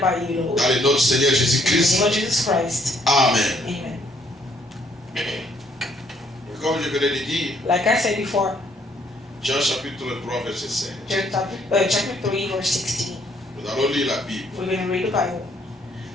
by you, Lord. Dans le nom du Seigneur In the Jésus-Christ. name of Jesus Christ. Amen. Amen. Et comme je venais de dire, Like I said before, Jean chapitre 3, verset 5. John chapter 3, verse 16. Nous allons lire la Bible. We're going to read the Bible.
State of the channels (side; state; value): both; normal; correlation 0.67